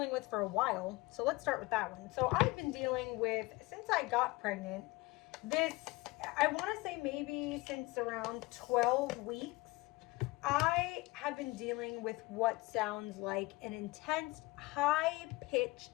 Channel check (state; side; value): quieter; right; 22.4 dB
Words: with for a while, so let's start with that one. So I've been dealing with, since I got pregnant, this, I want to say maybe since around 12 weeks, I have been dealing with what sounds like an intense, high